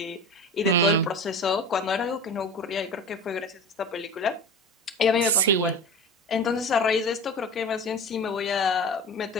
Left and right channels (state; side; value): normal; both; correlation 0.32